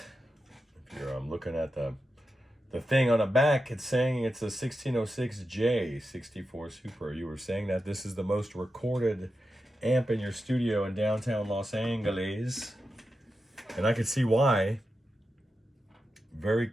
If you're looking at the thing on the back, it's saying it's a 1606J 64 Super. You were saying that this is the most recorded amp in your studio in downtown Los Angeles. And I could see why. Very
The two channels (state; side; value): normal; both; correlation 0.90